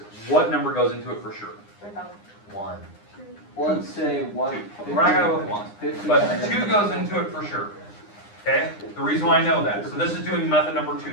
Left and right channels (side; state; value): right; late; 9.8 ms